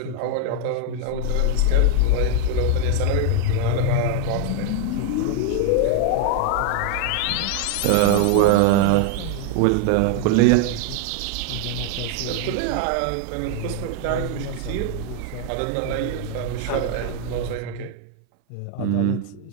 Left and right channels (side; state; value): both; different; correlation 0.00